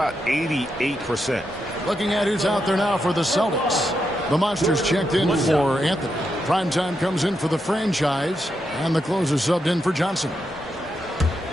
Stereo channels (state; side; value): normal; both; correlation 0.84